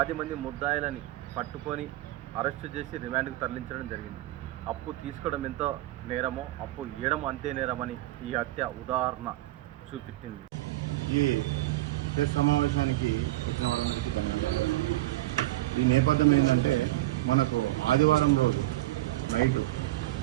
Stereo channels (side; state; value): left; quieter; 17.6 dB